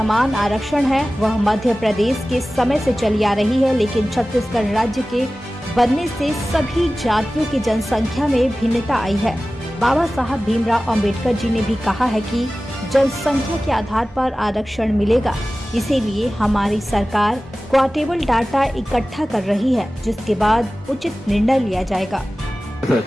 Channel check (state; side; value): normal; both; correlation 0.96